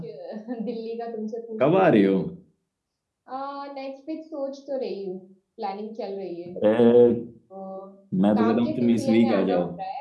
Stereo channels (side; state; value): both; identical; correlation 1.00